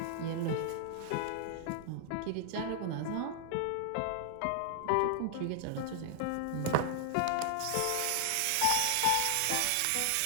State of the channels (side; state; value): both; different; correlation 0.00